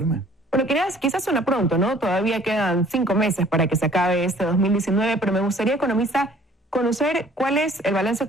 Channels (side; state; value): both; normal; correlation 0.55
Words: Bueno, quizás suena pronto, ¿no? Todavía quedan 5 meses para que se acabe este 2019, pero me gustaría, economista, conocer cuál es el balance